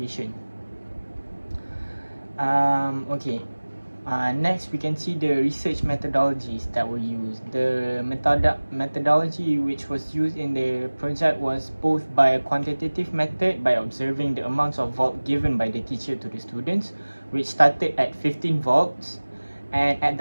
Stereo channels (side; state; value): both; inverted; correlation -1.00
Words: Okay. Next, we can see the research methodologies that were used. The methodology which was used in the project was both by a quantitative method, by observing the amounts of volt given by the teacher to the students, which started at 15 volts, and at